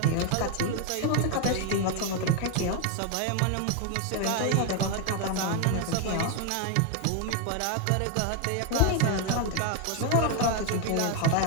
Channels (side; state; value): both; different; correlation 0.01